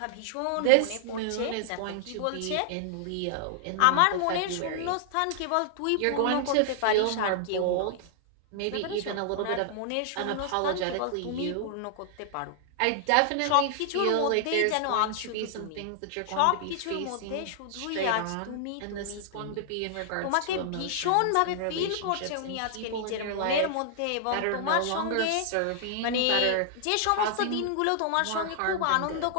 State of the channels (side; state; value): both; different; correlation -0.01